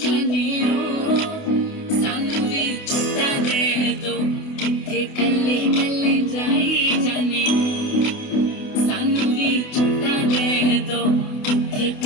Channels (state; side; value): late; right; 28 ms